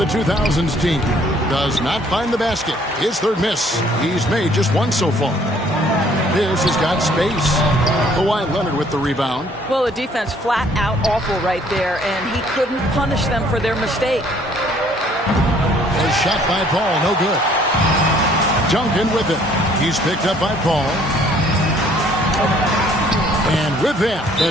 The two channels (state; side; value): normal; both; correlation 0.60